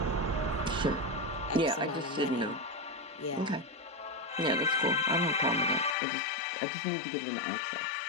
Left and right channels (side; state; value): right; drops out; at 6.0 s